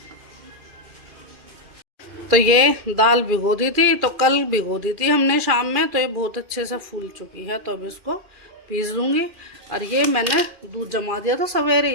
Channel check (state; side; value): late; left; 2.4 ms